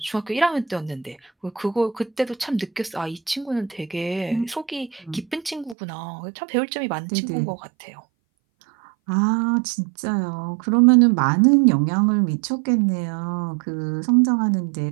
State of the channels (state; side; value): drops out; left; at 5.8 s